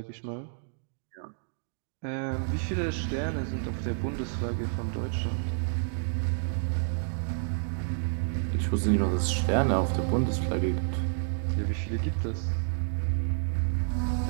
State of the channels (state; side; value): silent; left; digital silence